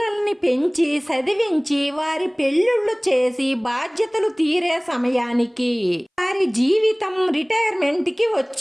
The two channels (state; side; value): identical; both; correlation 1.00